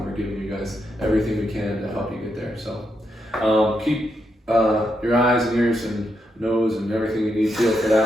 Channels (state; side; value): normal; both; correlation 0.81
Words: we're giving you guys everything we can to help you get there. So keep your eyes and ears and nose and everything you need feel for